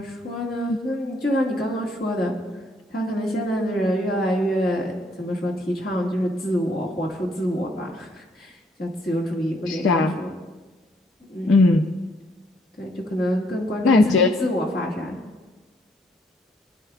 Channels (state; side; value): normal; both; correlation 0.69